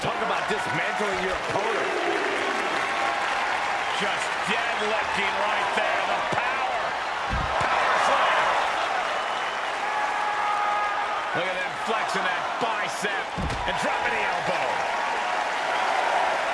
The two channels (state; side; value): identical; both; correlation 1.00